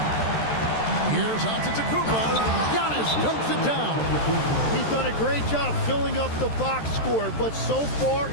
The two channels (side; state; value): right; late; 13 ms